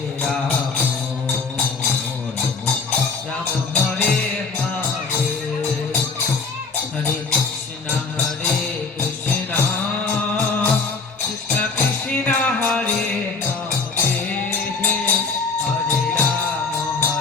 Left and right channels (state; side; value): quieter; right; 4.5 dB